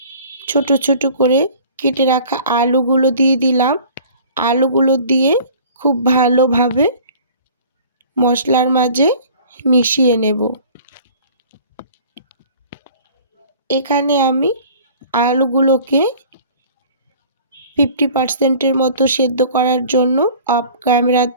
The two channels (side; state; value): both; inverted; correlation -0.47